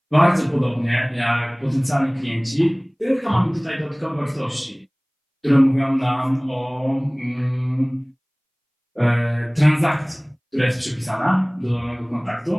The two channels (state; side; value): identical; both; correlation 1.00